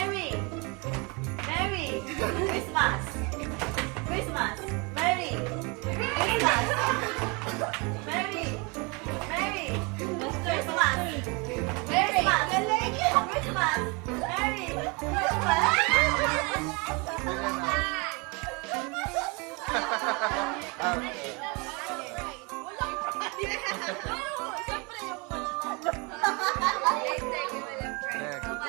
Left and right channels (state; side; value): quieter; left; 29.7 dB